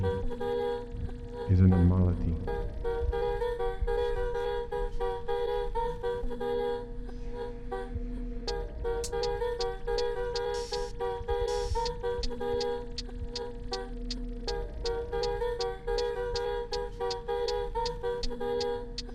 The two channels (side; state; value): both; identical; correlation 1.00